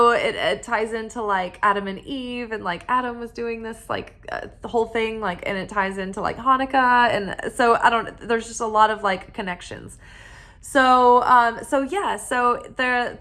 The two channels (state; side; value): identical; both; correlation 1.00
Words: it ties into like Adam and Eve, and like Adam was doing this like the whole thing, like, and it ties into like Hanukkah. And so there's just a lot of like connections. So